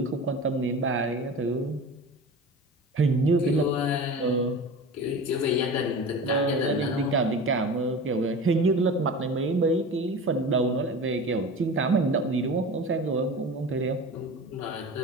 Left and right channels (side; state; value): both; normal; correlation 0.33